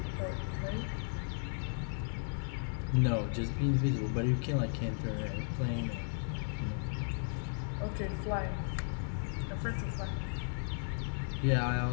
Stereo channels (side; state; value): right; silent; digital silence